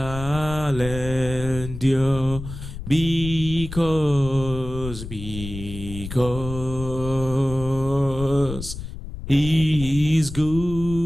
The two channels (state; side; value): noise; left; rumble, 10 dB below the sound